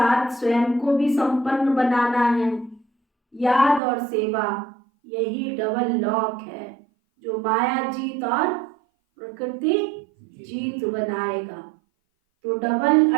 स्वयं को भी संपन्न बनाना है। याद और सेवा, यही डबल लॉक है जो माया जीत और प्रकृति जीत बनाएगा। तो डबल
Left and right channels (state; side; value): drops out; left; at 3.8 s